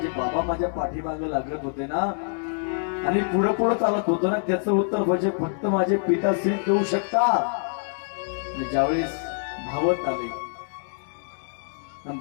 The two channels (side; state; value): right; silent; digital silence